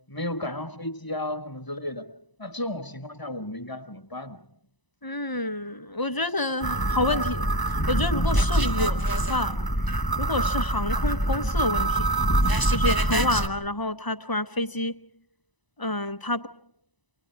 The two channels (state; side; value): late; right; 1.0 ms